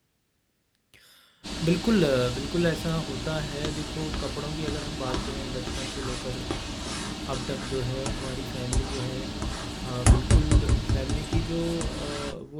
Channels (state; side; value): identical; both; correlation 1.00